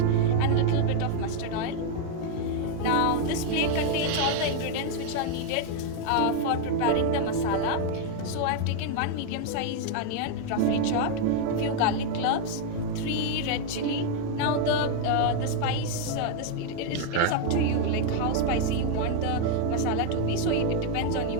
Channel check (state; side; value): different; both; correlation 0.00